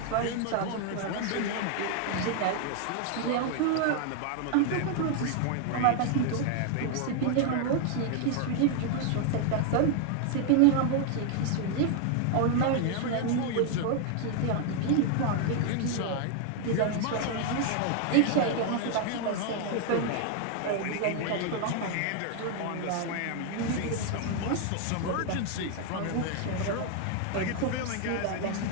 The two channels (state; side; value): different; both; correlation 0.00